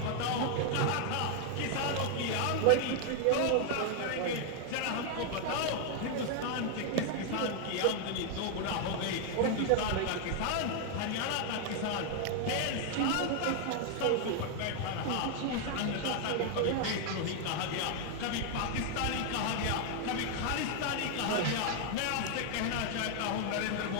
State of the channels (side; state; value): both; different; correlation 0.00